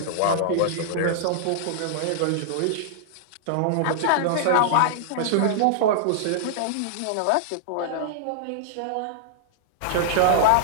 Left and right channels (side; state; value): both; different; correlation -0.01